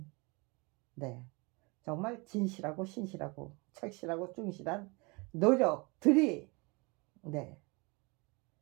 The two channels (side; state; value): left; quieter; 28.1 dB